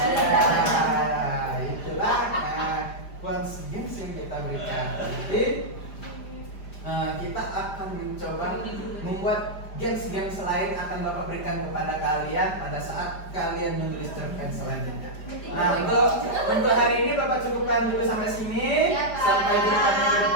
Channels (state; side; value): late; right; 5.0 ms